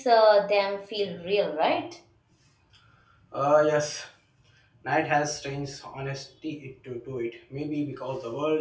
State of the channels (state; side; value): identical; both; correlation 1.00